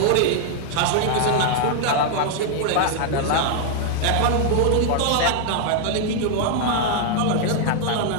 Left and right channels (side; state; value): both; different; correlation 0.00